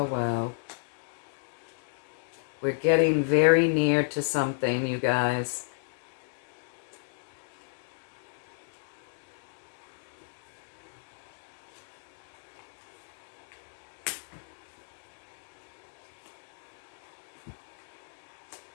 wow. We're getting very near to something, you guys.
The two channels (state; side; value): silent; right; digital silence